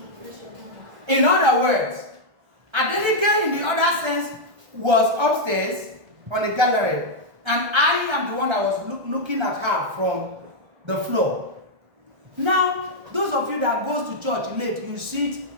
In other words, Adenike in the other sense was upstairs on the gallery, and I am the one that was looking at her from the floor. Now, those of you that goes to church late, you sit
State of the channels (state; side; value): late; left; 1.3 ms